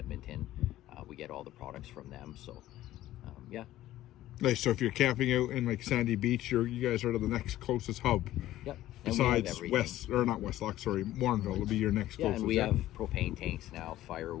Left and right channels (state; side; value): quieter; right; 14.4 dB